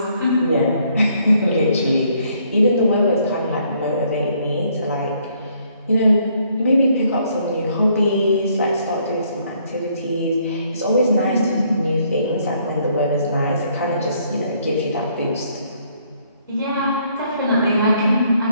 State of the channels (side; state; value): both; inverted; correlation -0.67